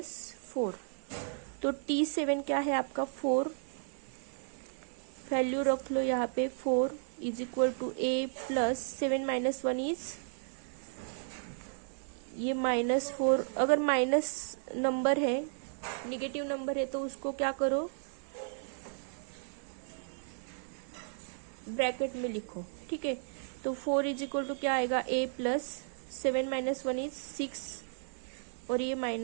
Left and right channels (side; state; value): left; silent; 55 dB below the other